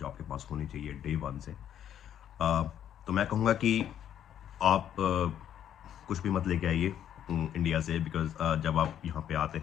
आपके पास होनी चाहिए डे वन से। तो मैं कहूँगा कि आप कुछ भी मत लेके आइए इंडिया से, बिकॉज जब आप यहाँ पे आते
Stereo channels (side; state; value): right; quieter; 10.1 dB